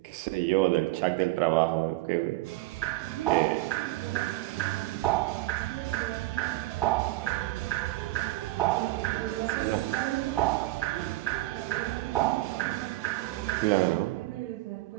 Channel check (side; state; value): left; quieter; 18.4 dB